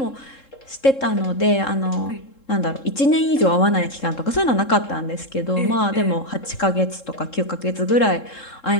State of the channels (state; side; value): late; right; 3.7 ms